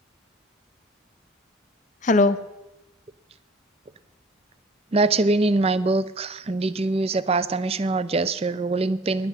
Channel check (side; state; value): both; normal; correlation 0.47